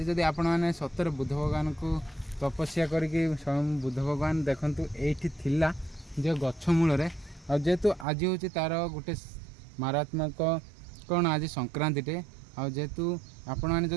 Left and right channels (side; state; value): left; drops out; at 8.1 s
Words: ଯଦି ଆପଣମାନେ ସତରେ ବୁଦ୍ଧ ଭଗବାନଙ୍କୁ ତପସ୍ୟା କରିକି ସ୍ୱୟଂ ବୁଦ୍ଧ ଭଗବାନ ଦେଖନ୍ତୁ ଏଇଠି ଥିଲା ଯେ ଗଛ ମୂଳରେ ଆଉ ଯେହେତୁ ଆଜି ହେଉଛି ତା'ର ଗୋଟେ ମାରାତ୍ମକ କ'ଣ ଆଜି ସଂକ୍ରାନ୍ତିଟେ ଆଉ ଯେହେତୁ ଆପଣମାନେ